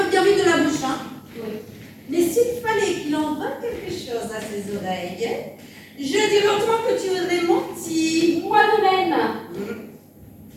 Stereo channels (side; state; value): both; identical; correlation 1.00